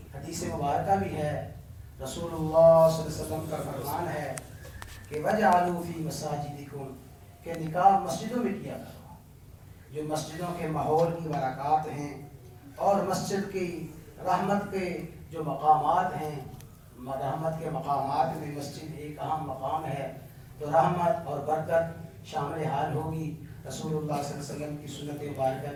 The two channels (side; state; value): both; identical; correlation 1.00